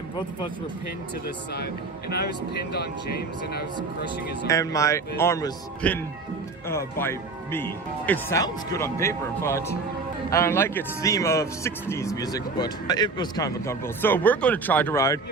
both of us were pinned to the side, and I was pinned on James, and I was crushing his arm. And my arm was pinned by me. It sounds good on paper, but I don't like its theme of 60s music, but it was kind of uncomfortable. So we're going to try to ride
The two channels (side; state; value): left; quieter; 3.9 dB